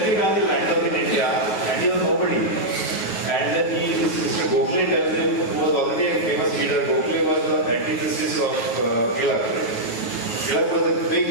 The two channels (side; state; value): right; late; 9.1 ms